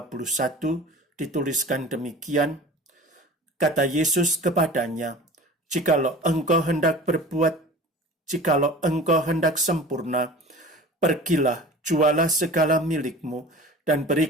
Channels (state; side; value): normal; both; correlation 0.39